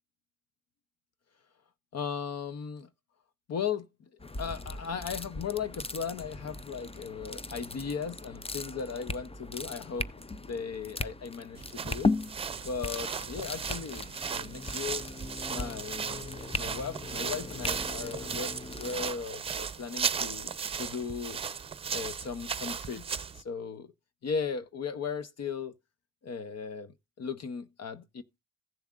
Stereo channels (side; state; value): both; normal; correlation 0.21